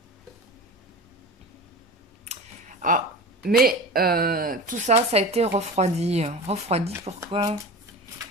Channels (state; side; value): normal; both; correlation 0.31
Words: Ah, mais tout ça, ça a été refroidi. Refroidi, pourquoi?